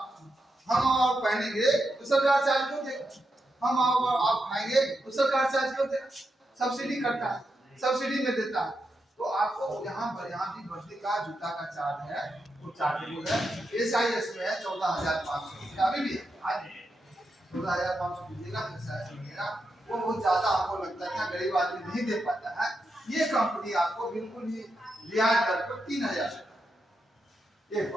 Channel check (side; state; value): both; normal; correlation 0.86